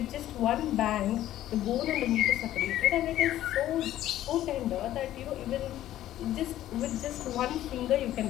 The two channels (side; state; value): right; quieter; 13.2 dB